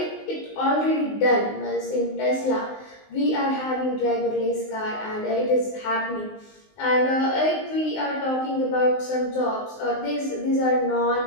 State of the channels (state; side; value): late; right; 19 ms